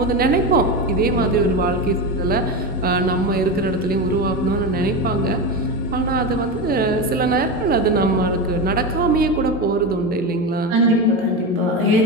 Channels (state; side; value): normal; both; correlation 0.18